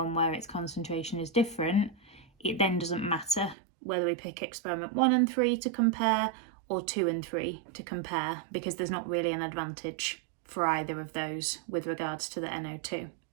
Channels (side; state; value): left; drops out; at 3.6 s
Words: where its concentration is different. It then doesn't matter whether we pick experiment 1 and 3 to compare or 2 and 3 to compare, because there's not really an advantage for either of those with regards to the NO2.